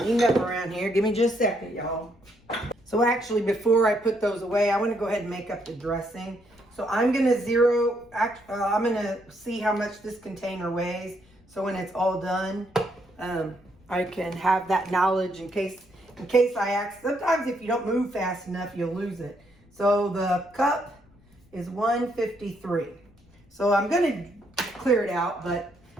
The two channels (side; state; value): left; noise; rumble, 29 dB below the sound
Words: up around here. Give me just a second, y'all. So actually, before I put those away, I want to go ahead and make up the dressing. So I'm going to I'm going to see how much this container weighs. So when it's all done, I can have that knowledge in case I ask. Sometimes if you don't move fast enough, you'll lose it. So the cup is 153. So I'm going to clear it out, but